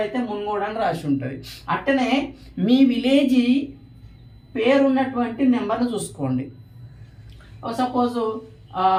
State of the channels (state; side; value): identical; both; correlation 1.00